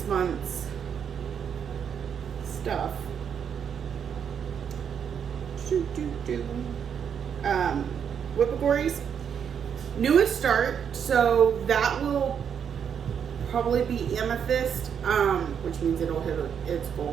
month's stuff. Whip gories. Newest start, so that will probably be Amethyst, which means it'll hit its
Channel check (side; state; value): left; quieter; 7.8 dB